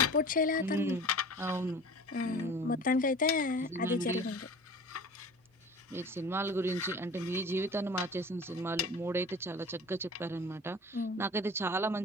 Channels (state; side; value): normal; both; correlation 0.40